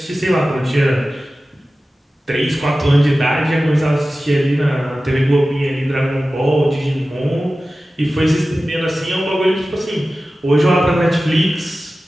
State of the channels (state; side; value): normal; both; correlation 0.95